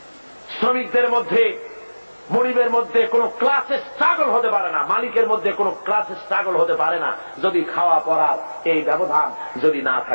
শ্রমিকদের মধ্যে, মনিবের মধ্যে কোন ক্লাসে স্ট্রাগল হতে পারে না, মালিকের মধ্যে কোন ক্লাসে স্ট্রাগল হতে পারে না, যদি খাওয়া পড়ার এই ব্যবধান যদি না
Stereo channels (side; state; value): both; inverted; correlation -1.00